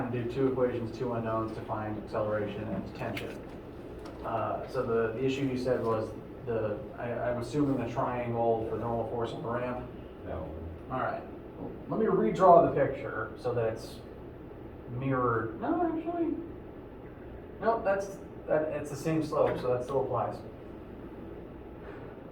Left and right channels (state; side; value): identical; both; correlation 1.00